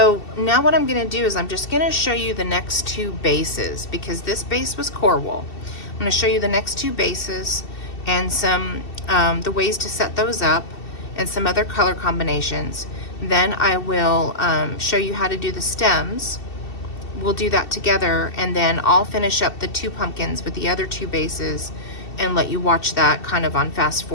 now what I'm gonna do is I'm just gonna show you the next two bases, because this base was core wool. I'm gonna show you the next two bases and some the ways to set those up and some other color combinations. Then I will show you how to do the stems. We'll do that together, and then I'll finish up the two pumpkins with the other two bases and let you watch that kind of on fast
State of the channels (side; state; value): right; late; 2.7 ms